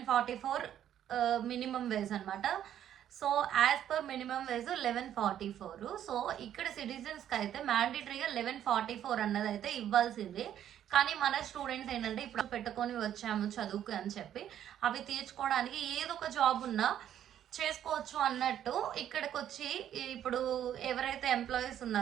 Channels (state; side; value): quieter; left; 10.6 dB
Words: మినిమం వేజ్ అనమాట. So as per minimum wage 1144. So ఇక్కడ సిటిజన్స్కి అయితే మ్యాండేటరీగా 1144 అన్నది అయితే ఇవ్వాల్సిందే. కానీ మన స్టూడెంట్స్ ఏంటంటే ఇప్పుడు పెట్టుకొని వచ్చాము చదువుకు అని చెప్పి అవి తీర్చుకోవడానికి ఏదో ఒక జాబ్ ఉన్నా చేసుకోవచ్చు అన్నట్టు ఇక్కడికి వచ్చి ఇప్పుడు ఎవరైతే ఎంప్లాయీస్